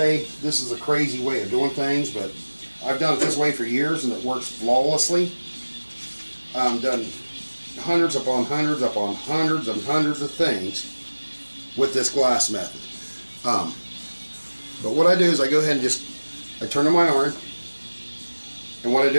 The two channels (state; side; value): inverted; both; correlation -1.00